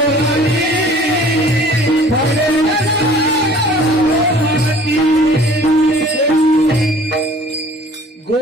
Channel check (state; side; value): normal; both; correlation 0.50